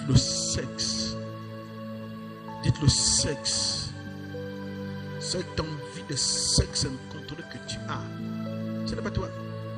le sexe. Dites le sexe. Cette envie de sexe incontrôlée que tu as, ce n'est pas toi.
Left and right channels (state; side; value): identical; both; correlation 1.00